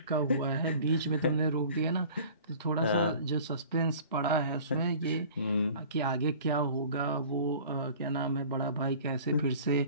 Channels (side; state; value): both; inverted; correlation -0.45